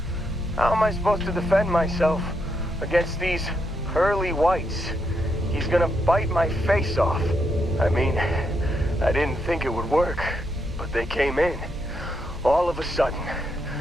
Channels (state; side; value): normal; both; correlation 0.80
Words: How am I supposed to defend myself against these early whites? He's gonna bite my face off." I mean, I didn't think it would work, but they came in. All of a sudden,